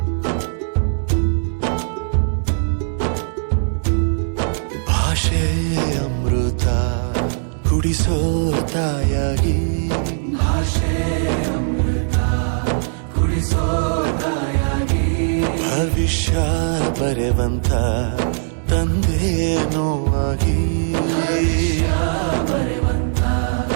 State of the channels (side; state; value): left; silent; digital silence